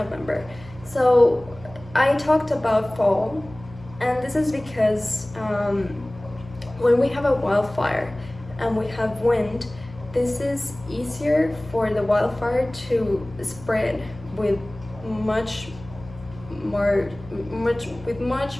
So I talked about fall, and this is because when we have a wildfire and we have wind, this is easier for the wildfire to spread with much more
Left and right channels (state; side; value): noise; left; hum, 18 dB below the sound